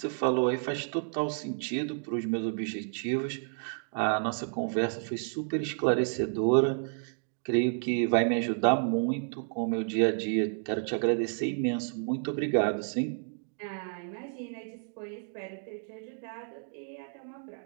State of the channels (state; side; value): silent; left; 57 dB below the other